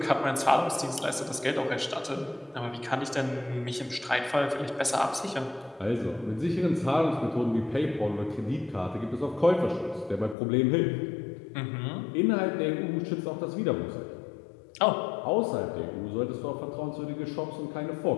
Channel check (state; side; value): drops out; right; at 10.4 s